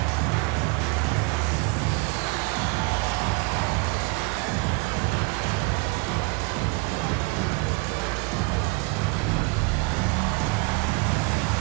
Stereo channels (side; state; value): left; quieter; 26.8 dB